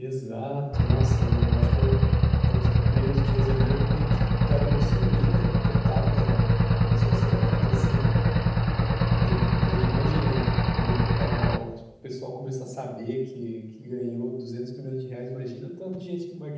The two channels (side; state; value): both; identical; correlation 1.00